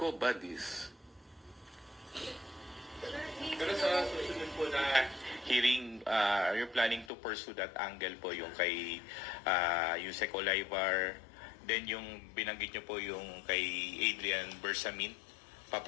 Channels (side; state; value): right; drops out; at 7.1 s